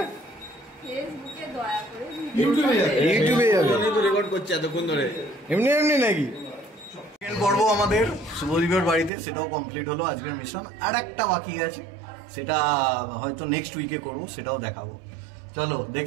ফেসবুকে দয়া করে ইউটিউবে যাবে। ইউটিউবে যাবে। তো রেকর্ড করছে এতক্ষণ ধরে। এমনি এমনি নাকি? সেকেন্ড পর্ব আমাদের শুভদীপের বাড়িতে, সেটাও কমপ্লিট হলো আজকের মিশন। আর একটা বাকি আছে, সেটা হয়তো নেক্সট উইকে করবো, সেটাও দেখাবো। চলো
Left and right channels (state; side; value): drops out; left; at 9.1 s